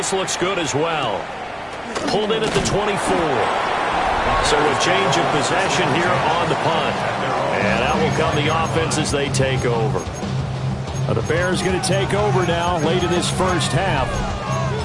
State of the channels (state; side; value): identical; both; correlation 1.00